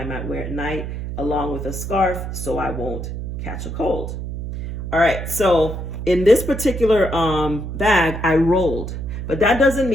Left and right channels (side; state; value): right; noise; hum, 6 dB below the sound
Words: might wear at night, along with a scarf, so I won't catch a cold. All right, so in this particular bag, I rolled. But that doesn't